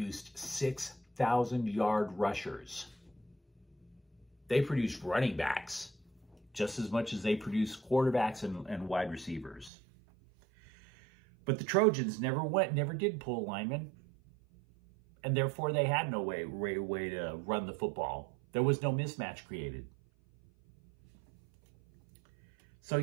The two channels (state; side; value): drops out; left; at 9.7 s